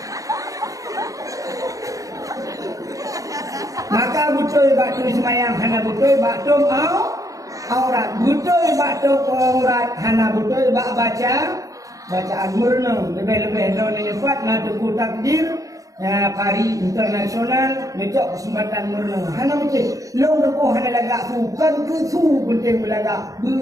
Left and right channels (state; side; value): late; left; 0.16 ms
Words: Maka betul batu semayang, hana betul batum aurat, betul batum aurat, hana betul baca. Bacaan murna lebih-lebih tahun ini kuat nak teguh takdir ya hari internasional ngejok kesempatan murna hana macam long depoh hana lagak bukan ke su penting belagak